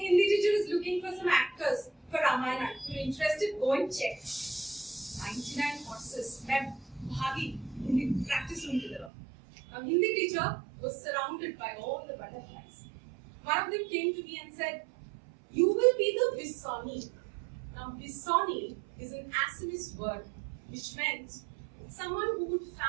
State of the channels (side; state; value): left; drops out; at 9.1 s